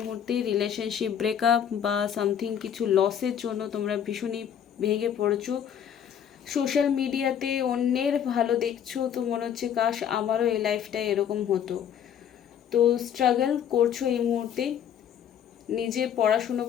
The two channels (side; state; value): right; quieter; 8.9 dB